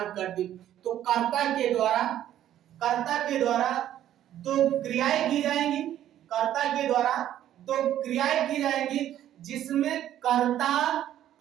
कर दी। तो कर्ता के द्वारा दो क्रियाएं की जाएंगी। कर्ता के द्वारा दो क्रियाएं की जाएंगी, जिसमें कर्ता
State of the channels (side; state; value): left; quieter; 11.8 dB